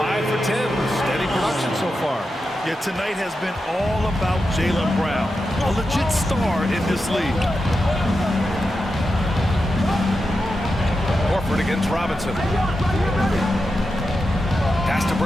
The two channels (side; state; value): both; normal; correlation 0.89